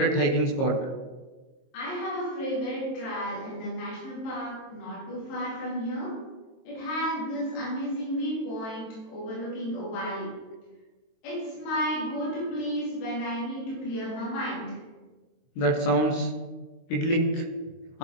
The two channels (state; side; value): late; right; 22 ms